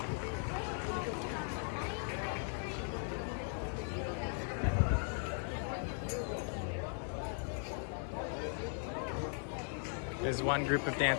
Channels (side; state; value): right; silent; 52 dB below the other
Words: As one group of